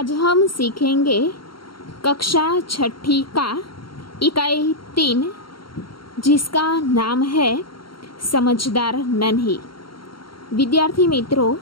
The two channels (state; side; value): late; right; 0.73 ms